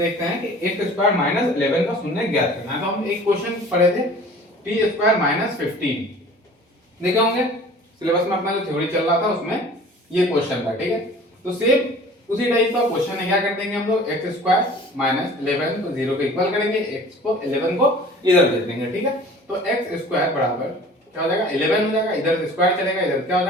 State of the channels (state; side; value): normal; both; correlation 0.46